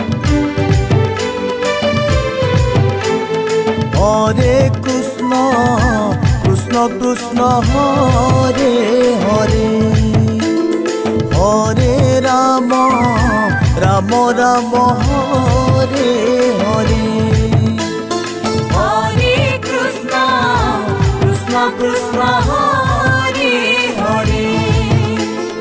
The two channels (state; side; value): identical; both; correlation 1.00